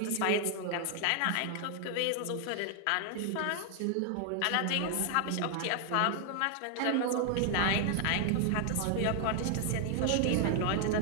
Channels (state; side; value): different; both; correlation 0.00